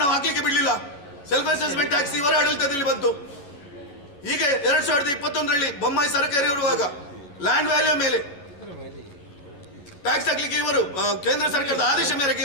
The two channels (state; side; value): late; right; 11 ms